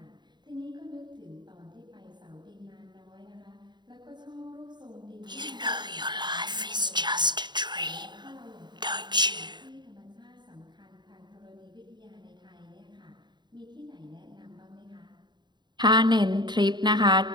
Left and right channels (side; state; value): left; late; 0.21 ms